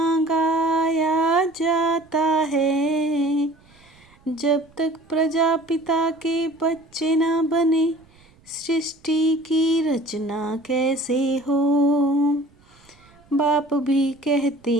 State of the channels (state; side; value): noise; right; rumble, 30 dB below the sound